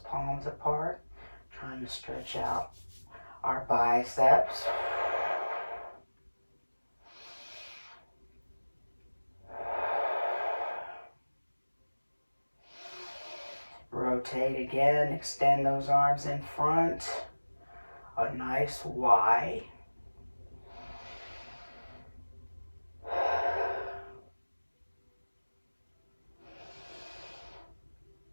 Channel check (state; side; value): inverted; both; correlation -1.00